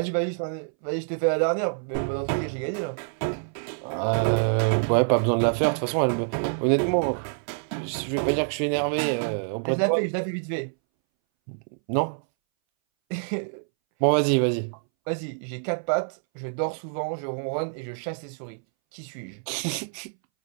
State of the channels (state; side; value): silent; left; 61 dB below the other